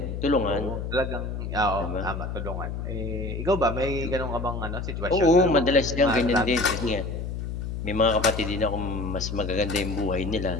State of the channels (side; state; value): left; noise; hum, 5 dB below the sound